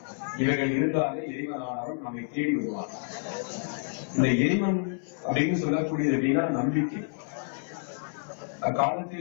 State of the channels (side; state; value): right; silent; 59 dB below the other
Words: இவைகள் இருந்தாலே இறைவனானவன் நம்மை தேடி வருவான். இந்த இறைவன் அப்படின்னு சொல்லக்கூடியது அப்படின்னா நம்பிக்கை.